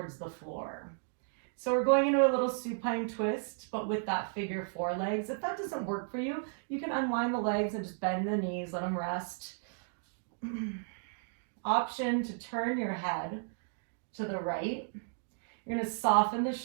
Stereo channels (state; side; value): silent; left; digital silence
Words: the floor. So we're going into a little supine twist, but with that figure 4 legs. If that doesn't work for you, you can unwind the legs and just bend the knees, let them rest. Option to turn your head to the right. You're going to soften the